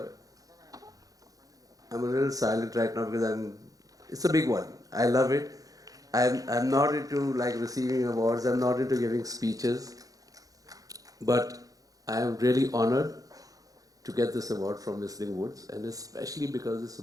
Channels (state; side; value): late; left; 0.17 ms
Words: I'm a little silent right now because it's a big one. I love it. I'm not into like receiving awards. I'm not into giving speeches, but I am really honored to get this award from Whistling Woods, and especially because it's